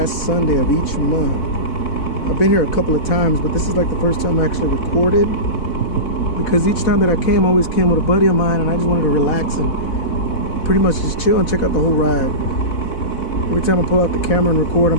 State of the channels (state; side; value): late; right; 4.1 ms